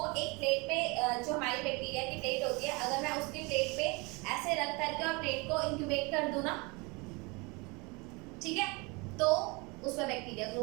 एक प्लेट पे, जो हमारी बैक्टीरिया की प्लेट होती है, अगर मैं उसकी प्लेट पे ऐसे रख करके और प्लेट को इंक्यूबेट कर दूं ना, ठीक है, तो उसमें बैक्टीरिया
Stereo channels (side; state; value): left; quieter; 27.5 dB